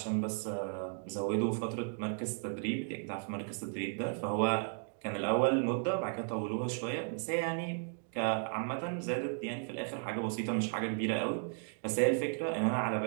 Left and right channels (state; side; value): silent; left; 54 dB below the other